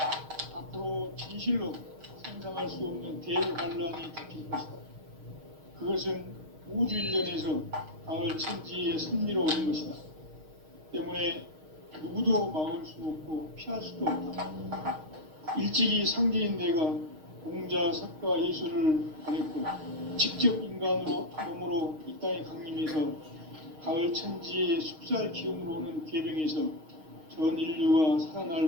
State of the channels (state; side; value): late; left; 6.4 ms